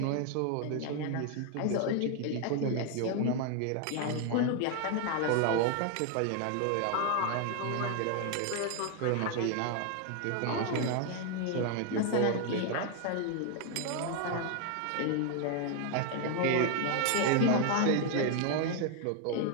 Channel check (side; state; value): both; different; correlation 0.01